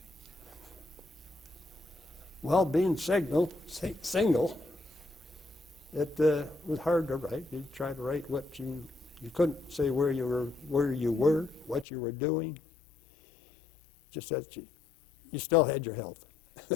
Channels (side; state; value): right; drops out; at 11.9 s